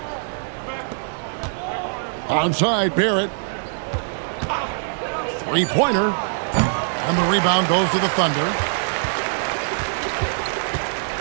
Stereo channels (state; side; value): silent; left; digital silence